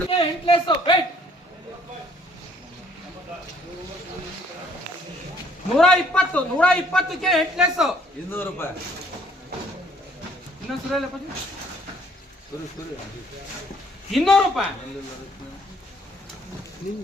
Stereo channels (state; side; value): normal; both; correlation 0.61